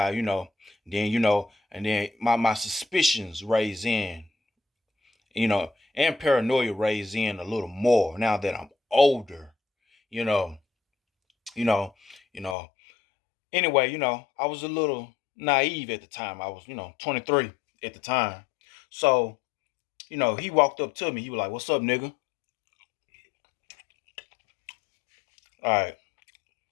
and then my suspicions raise in, and paranoia raise in a little more now that I'm older, you know, you know, you know. Anyway, I was a little naive at the time. I was, 23 at the time. So, he walked up to me. He was like, "What's up, nigga?" All right,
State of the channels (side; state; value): right; drops out; at 12.6 s